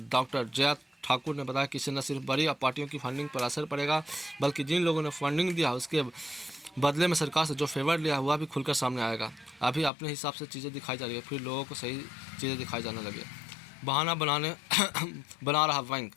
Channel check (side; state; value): right; drops out; at 9.9 s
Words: डॉक्टर जया ठाकुर ने बताया कि इससे न सिर्फ बड़ी पार्टियों की फंडिंग पर असर पड़ेगा, बल्कि जिन लोगों ने फंडिंग दिया उसके बदले में सरकार से जो फेवर लिया हुआ भी खुलकर सामने आएगा। अभी अपने हिसाब से चीज़ें दिखाई जा रही है, फिर लोगों को सही चीज़ें दिखाई जाने लगी। बहाना बना रहा बैंक,